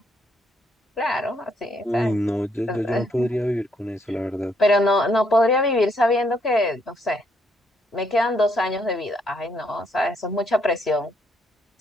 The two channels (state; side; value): normal; both; correlation 0.72